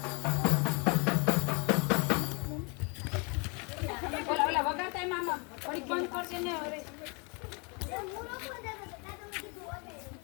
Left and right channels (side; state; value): right; quieter; 32.7 dB